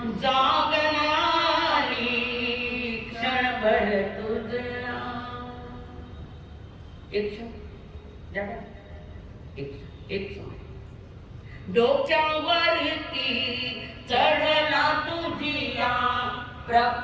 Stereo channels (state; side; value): identical; both; correlation 1.00